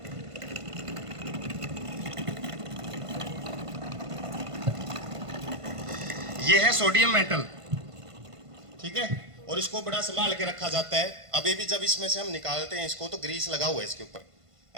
ये है सोडियम मेटल, ठीक है, और इसको बड़ा संभाल के रखा जाता है। अभी भी जब इसमें से हम निकालते हैं इसको तो ग्रीस लगा हुआ है इसके ऊपर,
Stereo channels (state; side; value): late; left; 1.5 ms